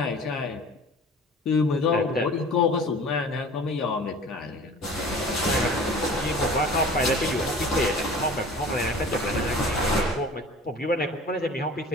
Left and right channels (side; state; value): both; normal; correlation 0.43